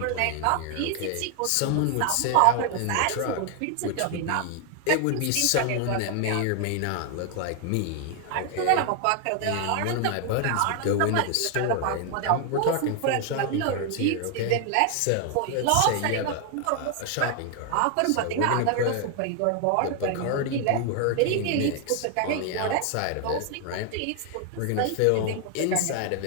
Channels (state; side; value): different; both; correlation 0.00